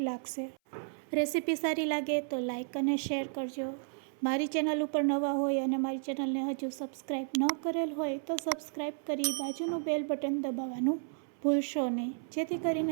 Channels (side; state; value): left; silent; 56 dB below the other